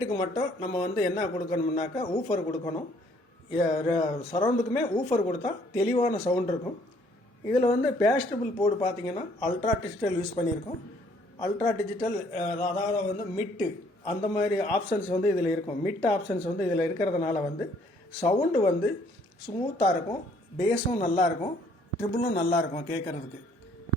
மட்டும் நம்ம வந்து என்ன கொடுக்கணும்னாக்கா ஊஃபர் கொடுக்கணும். சரவுண்டுக்குமே ஊஃபர் கொடுத்தா தெளிவான சவுண்ட் இருக்கும். இதில் வந்து பேஸ்டபிள் போர்டு பார்த்தீங்கன்னா அல்ட்ரா டிஜிட்டல் யூஸ் பண்ணியிருக்கோம். அல்ட்ரா டிஜிட்டல் அதாவது வந்து மிட்டு அந்த மாதிரி ஆப்ஷன்ஸ் வந்து இதில் இருக்கும். மிட் ஆப்ஷன்ஸ் வந்து இதில் இருக்கிறதுனால வந்து சவுண்டு வந்து ஸ்மூத்தாக இருக்கும், பேஸும் நல்லாயிருக்கும், ட்ரிபிளும் நல்லாயிருக்கும் கேட்குறதுக்கு.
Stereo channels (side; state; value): both; normal; correlation 0.63